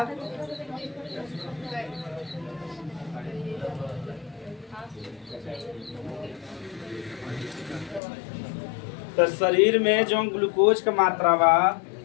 तो शरीर में जो ग्लूकोज का मात्रा बा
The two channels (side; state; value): right; drops out; at 8.0 s